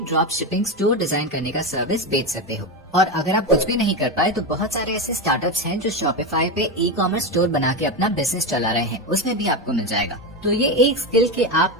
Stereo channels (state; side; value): normal; both; correlation 0.15